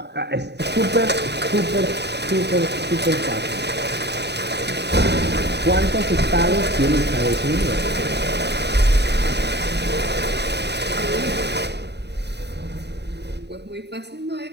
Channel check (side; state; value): left; late; 0.49 ms